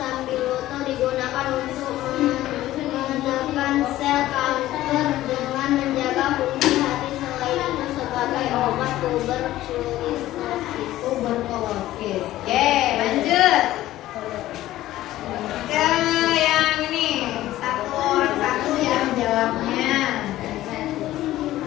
digunakan untuk menekan sel kanker dengan menjaga fungsi hati, selain itu sebagai obat tuberkulosis. Oke, lanjut. Ke yang ini, satu orang satu ya menjawabnya.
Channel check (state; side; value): quieter; right; 15.0 dB